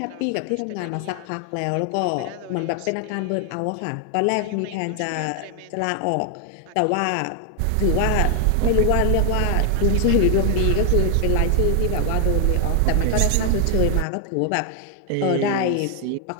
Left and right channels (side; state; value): both; different; correlation 0.00